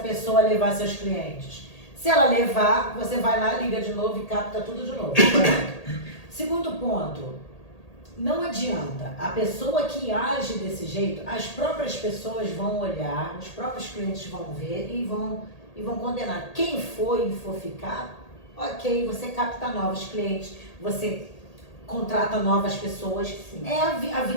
levar seus clientes. Se ela levar, você vai lá, liga de novo e capta tudo de novo. Segundo ponto, não adianta. A pessoa que age desse jeito, as próprias pessoas vão olhar, os próprios clientes vão ver e vão condenar. Quem for e for ficar, ok, você capta novos clientes, você contrata novas pessoas. Sim. A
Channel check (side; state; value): right; late; 1.8 ms